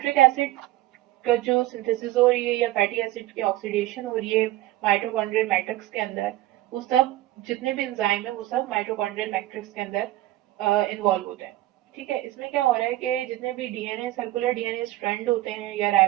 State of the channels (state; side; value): quieter; left; 15.8 dB